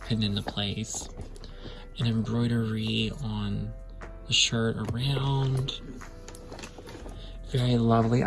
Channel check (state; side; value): identical; both; correlation 1.00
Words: pinned into place. And embroidery on the shirt around. Very lovely.